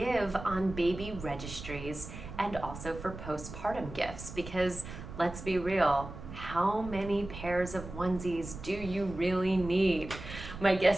on baby registries and also for postpartum gifts. Because let's be real, how many pairs of onesies do you really need? My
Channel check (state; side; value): noise; right; rumble, 11 dB below the sound